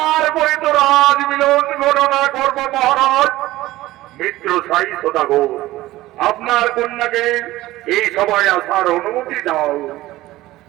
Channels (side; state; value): left; quieter; 16.9 dB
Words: তো রাজ মিলন গণনা করবো মহারাজ। মিত্র সাই সদাগর, আপনার কন্যাকে এই সভায় আসার অনুমতি দাও।